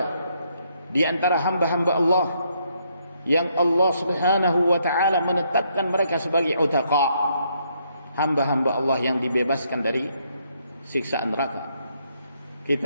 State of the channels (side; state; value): both; inverted; correlation -0.73